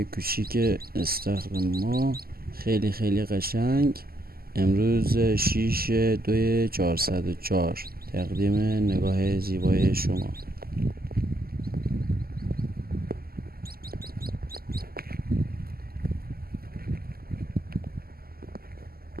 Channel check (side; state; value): left; late; 0.44 ms